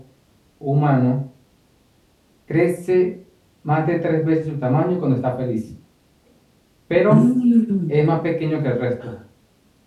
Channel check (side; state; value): both; identical; correlation 1.00